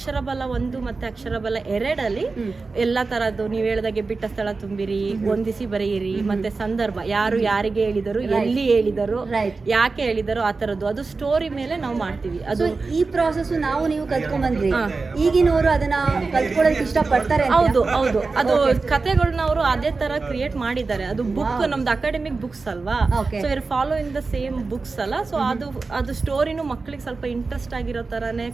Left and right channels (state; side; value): quieter; left; 4.0 dB